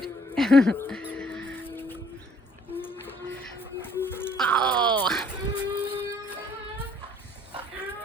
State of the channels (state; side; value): normal; both; correlation 0.60